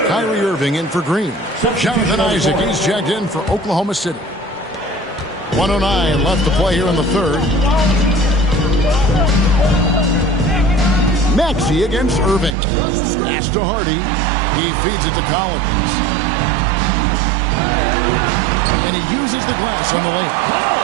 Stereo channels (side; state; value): left; drops out; at 12.6 s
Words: Kyrie Irving in for Green. Jonathan Isaac, he's checked in for Oklahoma City. 1:09 left to play here in the third. Maxey against Irving. Pass to Hardy. He feeds it to Collins. And he uses the glass on the